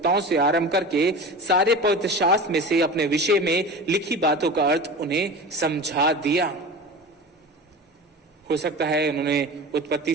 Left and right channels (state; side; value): normal; both; correlation 0.32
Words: से आरंभ करके सारे पवित्र शास्त्र में से अपने विषय में लिखी बातों का अर्थ उन्हें समझा दिया। हो सकता है उन्होंने